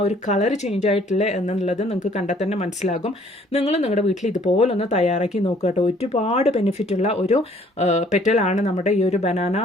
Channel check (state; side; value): normal; both; correlation 0.59